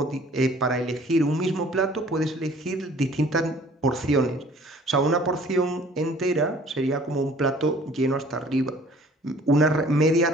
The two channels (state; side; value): normal; both; correlation 0.53